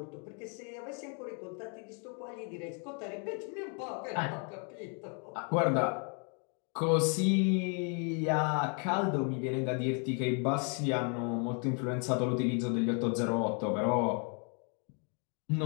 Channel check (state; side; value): quieter; right; 39.1 dB